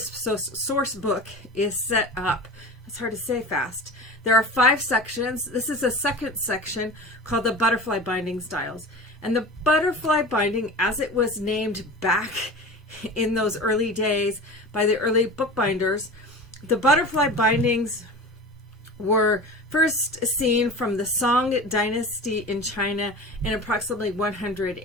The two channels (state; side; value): normal; both; correlation 0.34